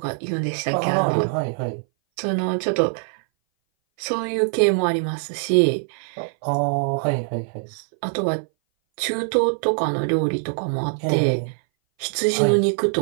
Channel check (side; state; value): left; silent; 59 dB below the other